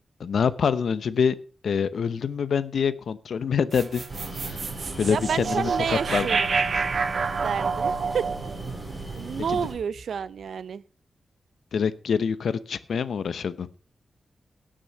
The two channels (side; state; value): both; normal; correlation 0.79